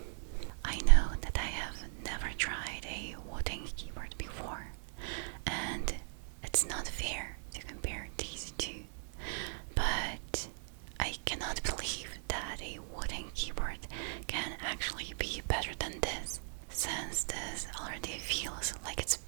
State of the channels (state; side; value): silent; left; digital silence